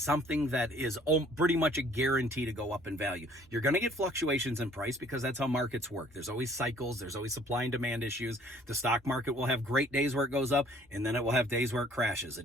that is pretty much a guarantee to go up in value. You're going to get fluctuations in price because that's how markets work. There's always cycles. There's always supply and demand issues. The stock market will have great days where it goes up, and then it will have days where it crashes.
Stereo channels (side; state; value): both; normal; correlation 0.57